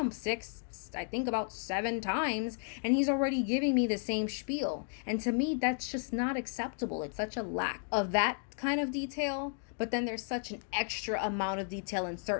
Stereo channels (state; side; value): silent; right; 55 dB below the other